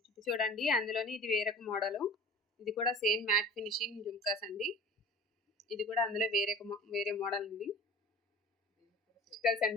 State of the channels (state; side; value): normal; both; correlation 0.41